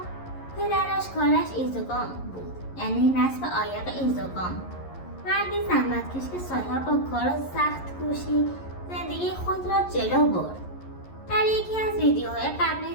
پدرش کارش ایزوگام بود، یعنی نصب عایق ایزوگام، مردی زحمتکش که سالها با کار و سخت کوشی زندگی خود را جلو برد. در یکی از ویدیوهای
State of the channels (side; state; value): right; late; 11 ms